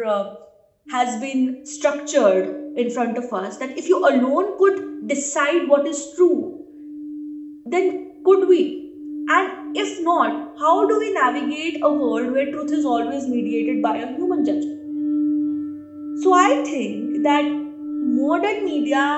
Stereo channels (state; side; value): identical; both; correlation 1.00